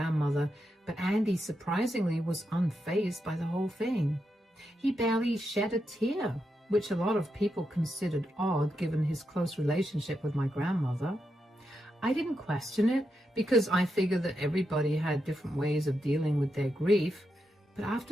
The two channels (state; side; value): normal; both; correlation 0.85